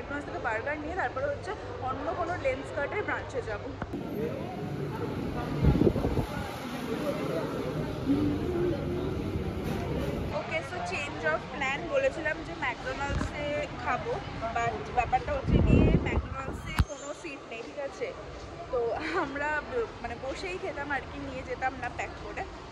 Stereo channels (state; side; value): identical; both; correlation 1.00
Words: থেকে বার্গার নিয়ে তারপরে হচ্ছে অন্য কোনো লেন্স কার্টের ব্রাঞ্চে যাবো। ওকে, সো চেঞ্জ অফ প্ল্যান। বলেছিলাম যে ম্যাকডোনাল্ডসে খাবো, বাট ব্যাপারটা হচ্ছে গিয়ে ম্যাকডোনাল্ডসে কোনো সিট নেই, ঠিক আছে। তো আমরা মানে বসেই খেতাম আর কি, নিয়ে যেতাম না প্যাক করে।